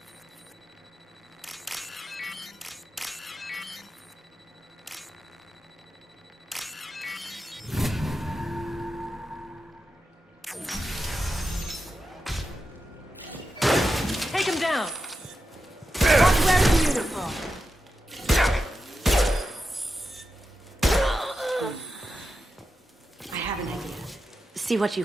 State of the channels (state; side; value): normal; both; correlation 0.90